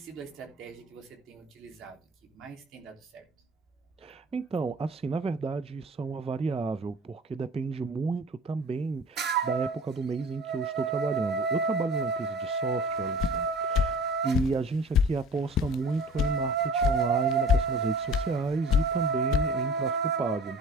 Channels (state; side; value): normal; both; correlation 0.42